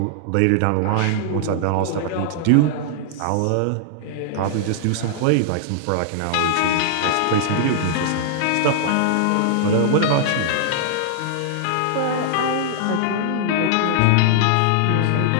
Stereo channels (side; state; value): both; different; correlation -0.01